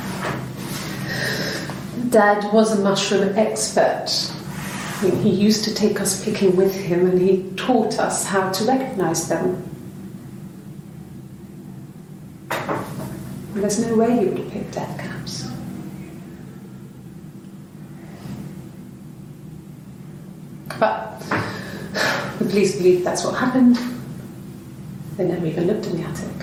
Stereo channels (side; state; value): both; identical; correlation 1.00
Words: Dad was a mushroom expert. I mean, he used to take us picking with him and he taught us how to recognise them. And there's no way he would have picked death caps. But the police believe that's what happened. They never even looked in the attic.